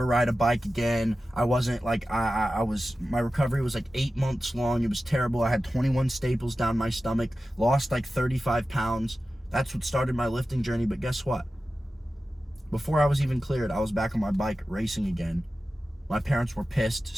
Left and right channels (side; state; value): both; normal; correlation 0.94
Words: ride a bike again. I wasn't like, my recovery was like 8 months long. It was terrible. I had 21 staples down my stomach, lost like 35 pounds. That's what started my lifting journey. But guess what? Before I was even cleared, I was back on my bike racing again. My parents were pissed,